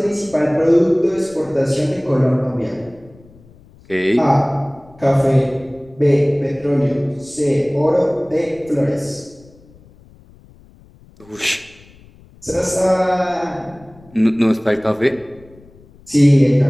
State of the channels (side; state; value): left; noise; rumble, 26 dB below the sound